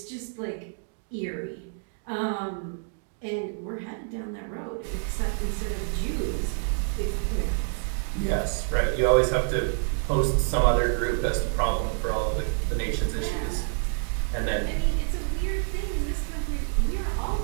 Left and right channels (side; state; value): left; silent; 60 dB below the other